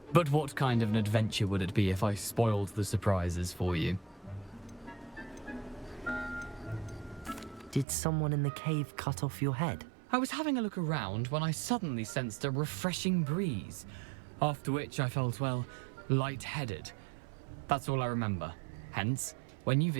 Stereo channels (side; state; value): left; drops out; at 7.9 s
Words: But what kind of an adventure would it be if I spoiled the surprises for you? Did someone in the cave cut off your head? I was having a look around when I suddenly sensed a refreshing breeze, after which I felt, well, lightheaded. That's all I remember. Hence, when you